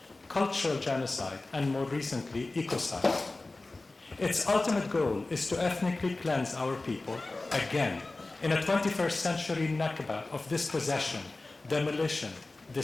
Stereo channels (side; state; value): right; quieter; 3.2 dB